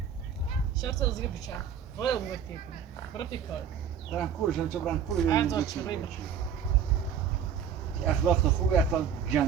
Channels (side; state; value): left; quieter; 7.7 dB